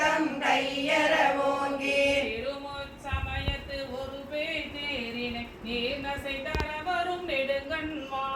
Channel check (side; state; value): both; identical; correlation 1.00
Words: கையற ஓங்கி திருமுச் சமயத்து ஒரு அசை தர வரும் நெடுங்கண்